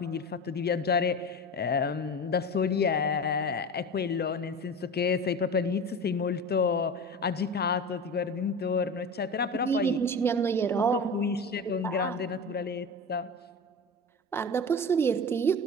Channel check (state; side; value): normal; both; correlation 0.29